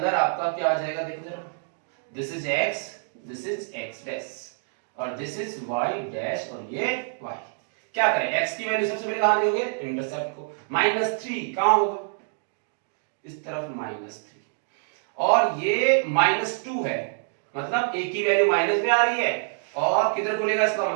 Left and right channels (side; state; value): left; silent; digital silence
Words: आपका क्या आ जाएगा देखो जरा, this is x, this is x dash और दिस इज y डैश और ये y। क्या करें, x की वैल्यू सबसे पहले कहां दोगे, इंटरसेप्ट को। -3 कहां होगा, इस तरफ -3 और ये -2 है, मतलब a की वैल्यू माइनस में आ रही है और किधर खुलेगा, इसका